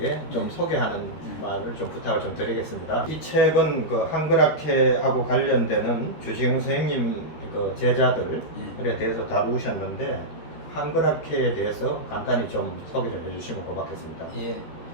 좀 소개하는 말을 좀 부탁을 좀 드리겠습니다. 이 책은 그 한글학회하고 관련되는 주시영 선생님 그 제자들에 대해서 다루셨는데 한글학회에 대해서 간단히 좀 소개를 해주시면 고맙겠습니다. 예.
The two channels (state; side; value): late; right; 13 ms